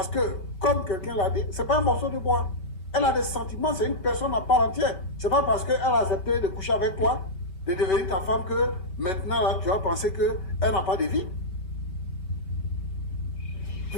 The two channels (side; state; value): right; late; 5.3 ms